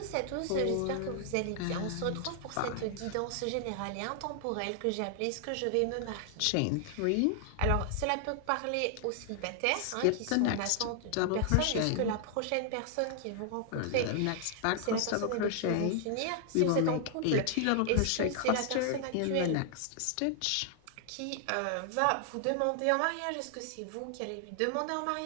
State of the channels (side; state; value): both; different; correlation 0.00